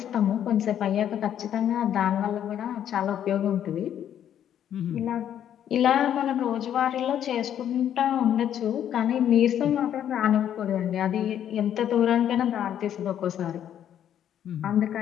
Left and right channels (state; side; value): quieter; right; 10.1 dB